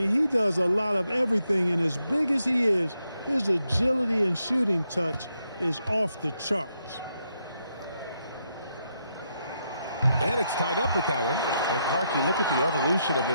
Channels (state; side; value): inverted; both; correlation -0.80